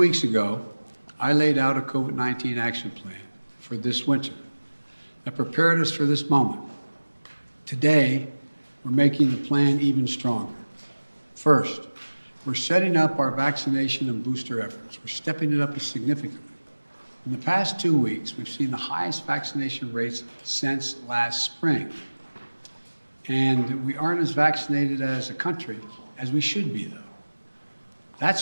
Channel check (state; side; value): inverted; both; correlation -1.00